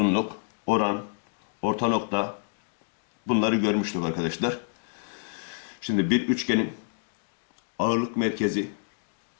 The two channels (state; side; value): silent; right; digital silence